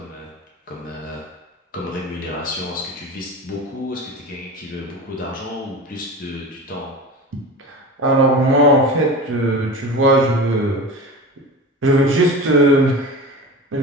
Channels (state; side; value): normal; both; correlation 0.30